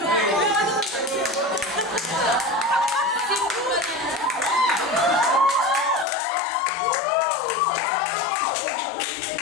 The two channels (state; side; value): drops out; right; at 6.1 s